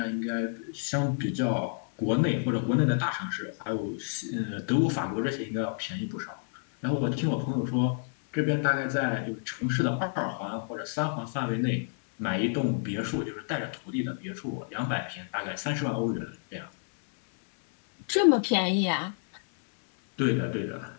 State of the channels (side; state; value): right; silent; digital silence